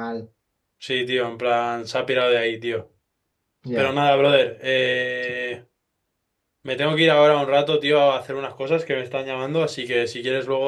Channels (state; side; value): identical; both; correlation 1.00